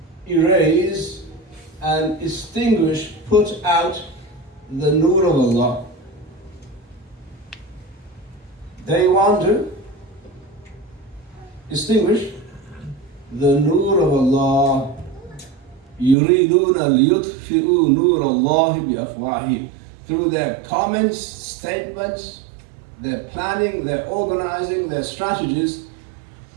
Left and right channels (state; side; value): drops out; left; at 16.2 s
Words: erase and extinguish, put out the nur of Allah. They want to distinguish the nur of Allah. يُرِيدُونَ لِيُطْفِئُوا نُورَ اللَّهِ بِأَفْوَاهِهِمْ. Through their comments, statements, their planning, their organizing, their strategies,